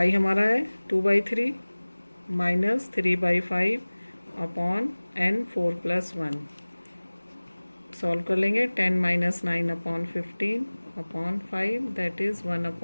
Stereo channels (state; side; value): inverted; both; correlation -1.00